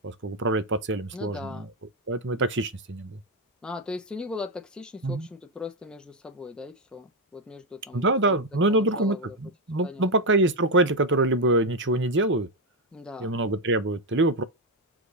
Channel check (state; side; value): normal; both; correlation 0.05